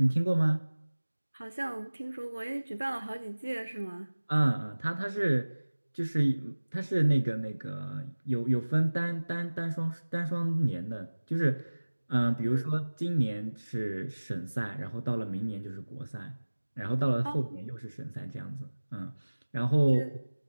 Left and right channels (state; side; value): inverted; both; correlation -1.00